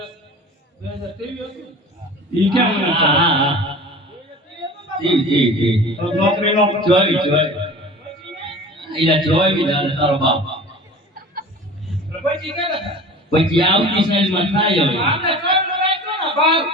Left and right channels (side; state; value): both; normal; correlation 0.39